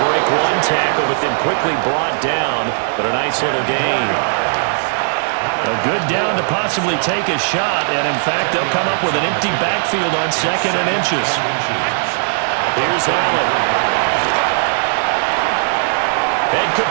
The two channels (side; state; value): left; silent; digital silence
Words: break one tackle, but then quickly brought down. But a nice little gain. A good down to possibly take a shot, and in fact, they'll come up with an empty backfield on 2nd and inches. Here's Allen. And